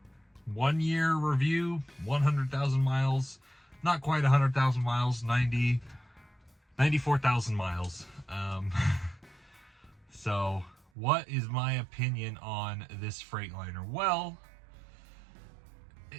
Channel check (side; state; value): left; drops out; at 10.9 s